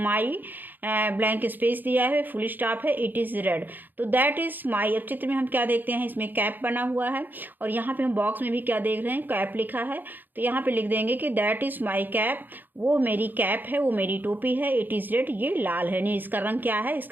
blank space दिया है, फुल स्टॉप है, इट इज़ रेड। तो दैट इज़ माई, अब चित्र में हम क्या देखते हैं? इसमें कैप बना हुआ है, और यहाँ पे हम बॉक्स में भी क्या देख रहे हैं? कैप लिखा है। तो यहाँ पे लिख देंगे कि दैट इज़ माई कैप, वो मेरी कैप है, वो मेरी टोपी है। इट इज़ रेड, ये लाल है, नहीं इसका रंग क्या है?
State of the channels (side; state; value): left; late; 0.089 ms